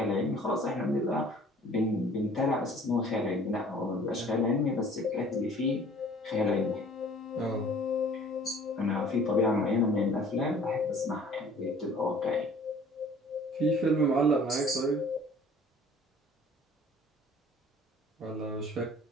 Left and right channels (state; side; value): normal; both; correlation 0.51